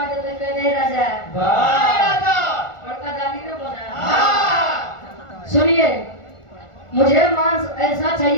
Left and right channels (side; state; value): right; late; 1.4 ms